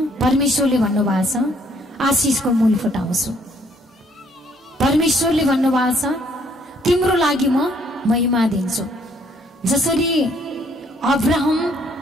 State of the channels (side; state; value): both; normal; correlation 0.66